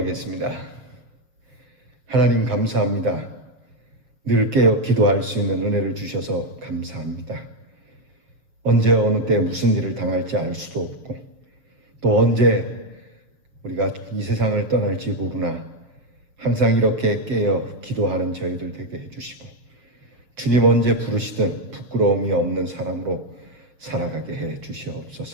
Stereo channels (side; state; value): left; late; 7.2 ms